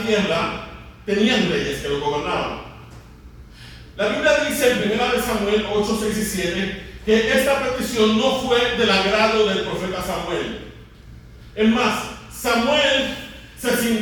tierra tenían reyes que lo gobernaban. La Biblia dice en 1 Samuel 8, 6 y 7 que esta petición no fue del agrado del profeta Samuel. Es más, Samuel se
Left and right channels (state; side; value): identical; both; correlation 1.00